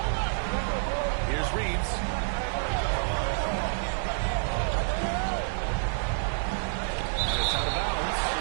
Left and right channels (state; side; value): silent; left; 56 dB below the other